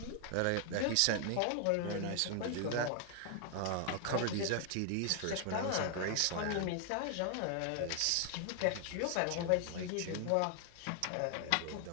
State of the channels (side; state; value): both; different; correlation 0.00